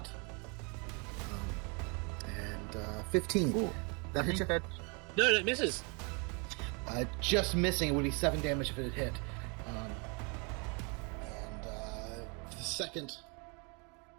and 15. Ooh, that hits you? No, it misses. Just missing. It would be 7 damage if it had hit. The second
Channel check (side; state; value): left; quieter; 33.4 dB